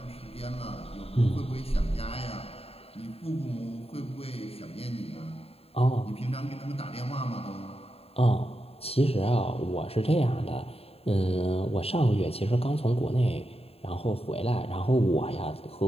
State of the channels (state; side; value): late; right; 0.29 ms